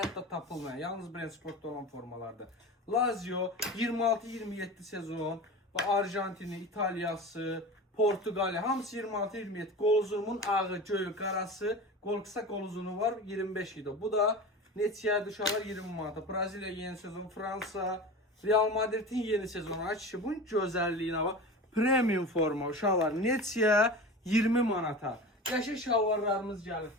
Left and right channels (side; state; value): both; normal; correlation 0.31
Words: tapılmayan, yalnız Brentsportda olan formalardır. Lazio 26-27 sezon və Arjantini, İtaliyası, Portuqaliya hamısı 26-27. Qoluzumun ağı, göyü, qarası, qol qısa qol uzunu var 25 idi. Bu da neçəyə düşələr 20 manata. Braziliya yeni sezon, Fransa, Real Madridin yeni sezonu. Ay kişi, bunun gözəlliyinə bax. Premium forma uşaqlar neçəyə 20 manata. Qəşəng şalvarlarımız